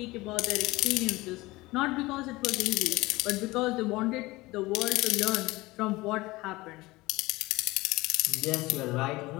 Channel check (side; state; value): right; quieter; 20.6 dB